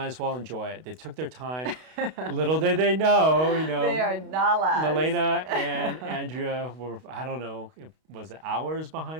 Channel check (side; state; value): left; late; 32 ms